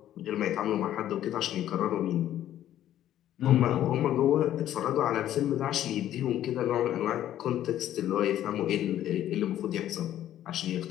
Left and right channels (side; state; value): right; quieter; 12.1 dB